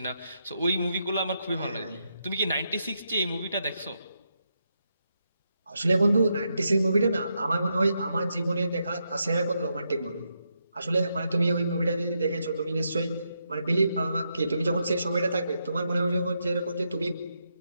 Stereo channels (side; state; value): both; inverted; correlation -0.82